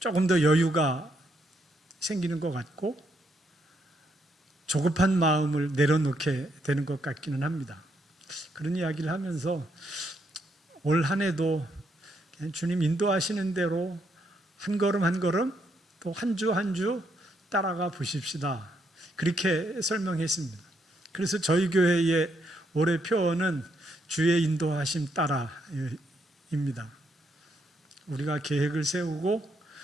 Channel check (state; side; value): normal; both; correlation 0.76